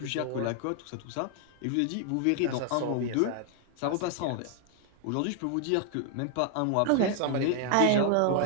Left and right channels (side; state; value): both; different; correlation 0.00